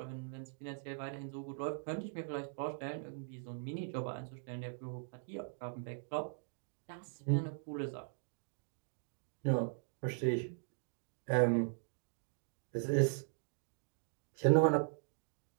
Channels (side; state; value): left; silent; digital silence